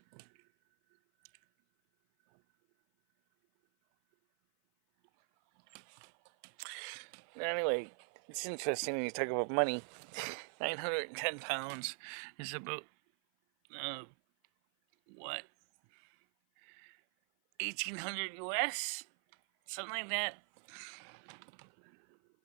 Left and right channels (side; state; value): left; silent; 50 dB below the other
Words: Anyway, it's interesting when you talk about money. 910 pounds is about, what? 1,800 U.S.? Something like that.